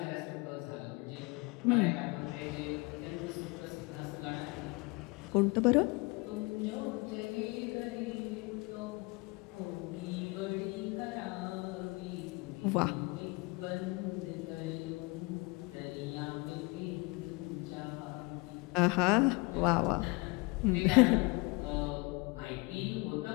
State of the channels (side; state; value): right; quieter; 26.8 dB